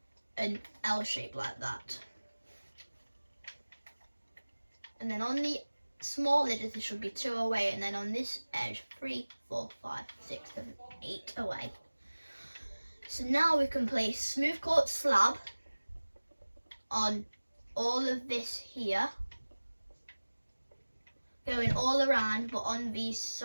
an L shape like that. And then on the small edges, there should be 2 away. And then on this edge, 3, 4, 5, 6, 7, 8 away. So now we can place smooth quartz slab on all of this here, going all around, but on these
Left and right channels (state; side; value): inverted; both; correlation -1.00